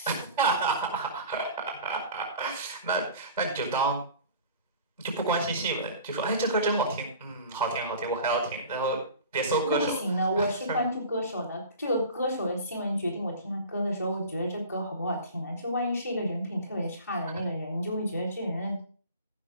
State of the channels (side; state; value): both; inverted; correlation -0.39